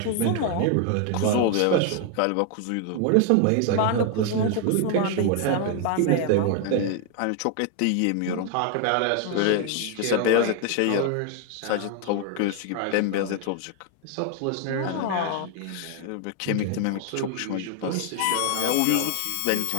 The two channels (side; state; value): both; different; correlation 0.00